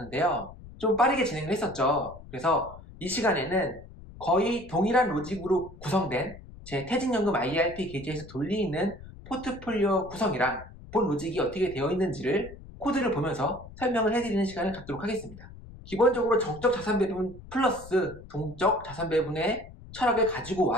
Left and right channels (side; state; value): left; noise; rumble, 17 dB below the sound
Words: 좀 빠르게 진행을 했었죠. 그래서 이 시간에는 거의 동일한 로직으로 구성된 제 퇴직연금 IRP 계좌에서 돌리는 포트폴리오 구성이랑 본 로직이 어떻게 되어 있는지를 코드를 보면서 설명을 해드리는 시간을 갖도록 하겠습니다. 기본적으로 정적 자산 배분 플러스 동적 자산 배분의 철학을 가지고